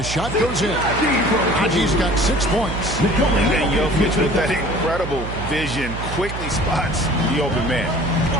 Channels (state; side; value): noise; right; hum, 7 dB below the sound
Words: shot goes in. Naji's got 6 points. And Jokic with that incredible vision quickly spots the open man.